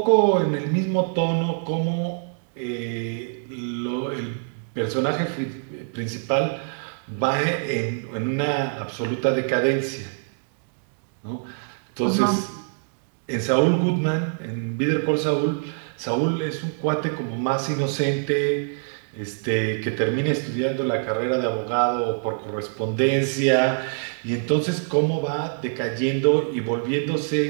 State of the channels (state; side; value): silent; left; digital silence